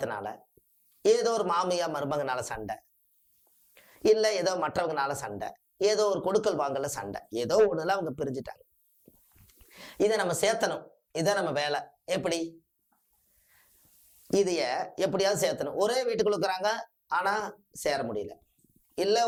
ஏதோ ஒரு மாமியா மருமகனால சண்டை, இல்லை ஏதோ மற்றவங்கனால சண்டை, ஏதோ ஒரு கொடுக்கல் வாங்கல சண்டை, ஏதோ ஒண்ணுல அவங்க பிரிஞ்சுட்டாங்க. இதை நம்ம சேர்த்தணும். இதை நம்ம வேலை. எப்படி இதைய எப்படியாவது சேர்த்தணும். ஒரே வீட்டுக்குள்ள இருக்கிறாங்க, ஆனா சேர முடியல. இல்ல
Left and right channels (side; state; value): both; identical; correlation 1.00